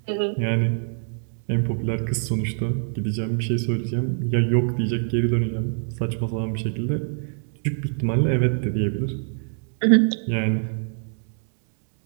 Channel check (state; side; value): silent; left; 62 dB below the other